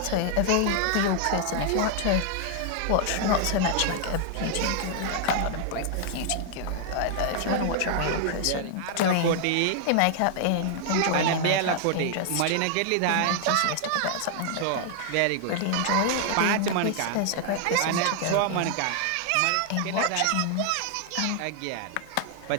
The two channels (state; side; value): different; both; correlation 0.00